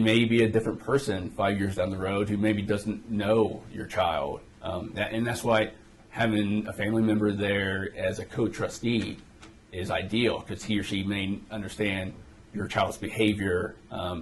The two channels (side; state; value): both; identical; correlation 1.00